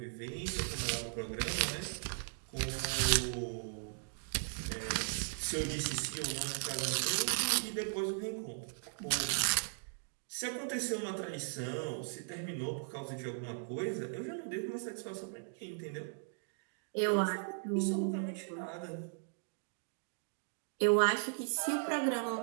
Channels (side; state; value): left; silent; digital silence